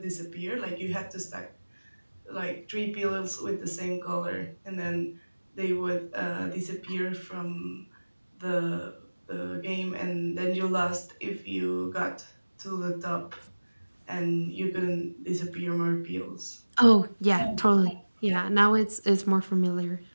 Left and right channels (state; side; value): inverted; both; correlation -1.00